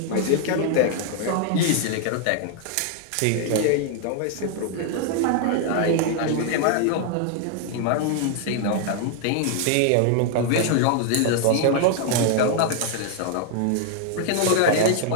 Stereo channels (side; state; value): both; different; correlation 0.00